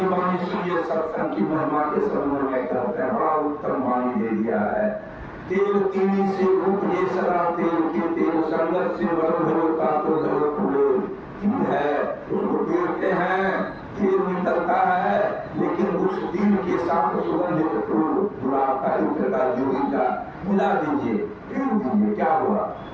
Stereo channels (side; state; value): both; identical; correlation 1.00